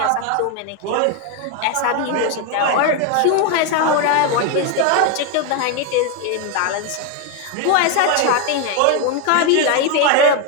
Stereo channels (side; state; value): both; different; correlation 0.01